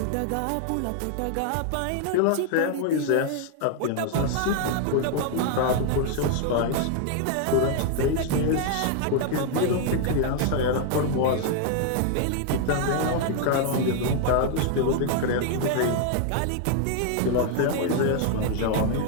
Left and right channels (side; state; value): both; different; correlation 0.00